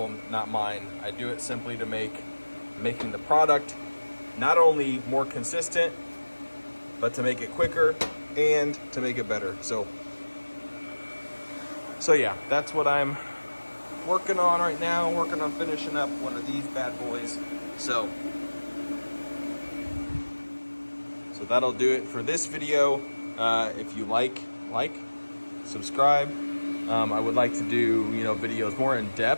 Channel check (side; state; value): both; inverted; correlation -1.00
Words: not mine. I do it simply to making the product not only more consistent, but to make it quicker and to make it better. So yeah, that's what I'm working on right now. Working on finishing up one of these bad boys. So that'll do it for this video. If you like, subscribe. I would like to do, you know, videos more in